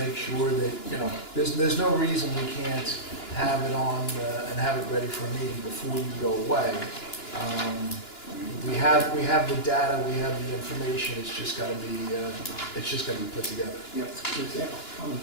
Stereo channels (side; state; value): right; late; 2.9 ms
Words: sure that, there's no reason we can't have it on and have it ready for a meeting before you go away. We have the data, we have the information, it's just got to be put together. Yep.